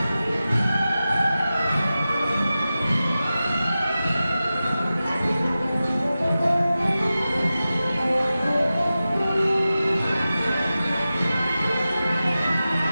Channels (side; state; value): both; inverted; correlation -0.94